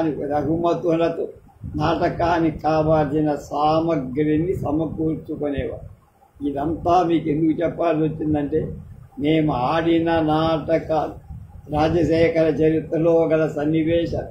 రఘుమతులతో నాటకానికి కావాల్సిన సామగ్రిని సమకూర్చుకునేవారు. ఇదంతా మీకు ఎందుకు చెప్పాల్సి వచ్చిందంటే, మేము ఆడిన నాటకాలు, రాజశేఖర చరిత్రలో గల సన్నివేశాలు,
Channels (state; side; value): identical; both; correlation 1.00